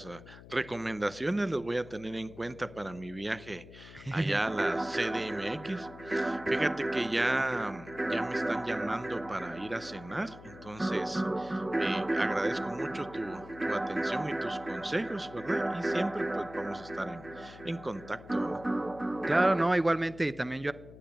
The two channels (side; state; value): left; noise; hum, 17 dB below the sound